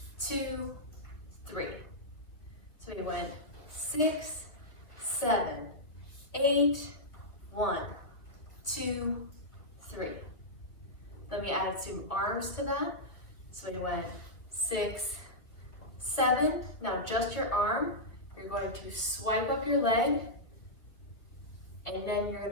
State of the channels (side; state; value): right; late; 2.0 ms